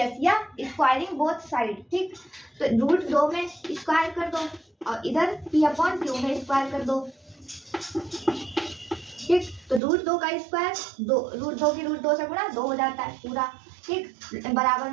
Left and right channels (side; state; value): left; drops out; at 9.8 s